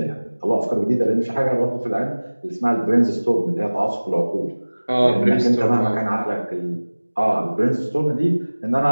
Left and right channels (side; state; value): both; inverted; correlation -1.00